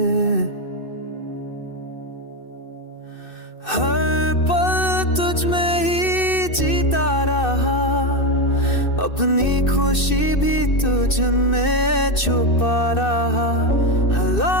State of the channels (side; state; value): right; late; 2.6 ms